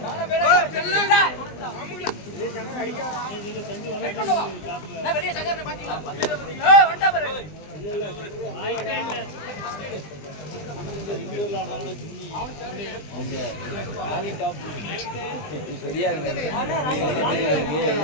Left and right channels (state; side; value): late; right; 20 ms